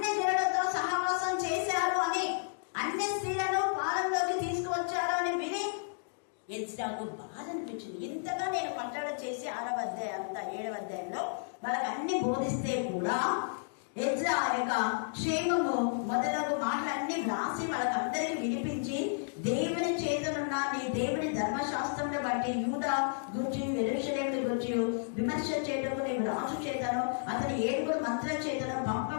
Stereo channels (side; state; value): right; silent; digital silence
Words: జనులతో సహవాసం చేశారు అని, అన్య స్త్రీలను పాలనలోకి తీసుకువచ్చారు అని విని ఎజ్రాకు బాధ అనిపించింది. ఇంతగా నేను కట్టడి చేసి 6వ అధ్యాయం 7వ అధ్యాయంలో వాళ్ళకి అన్ని బోధిస్తే కూడా ఎజ్రా యొక్క క్షేమము మొదలగు మాటలన్నీ వ్రాసి వాళ్ళకందరికీ వినిపించి, దేవుని చేతనున్న నీ దేవుని ధర్మశాస్త్రంను బట్టి యూదా గురించి యెరూషలేమును గురించి విమర్శ చేయటకు నేను రాజు చేతను అతని 7 మంత్రుల చేతను